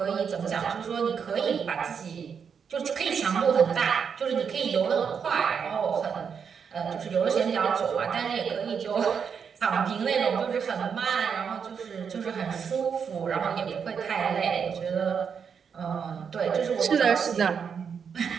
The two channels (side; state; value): left; quieter; 6.7 dB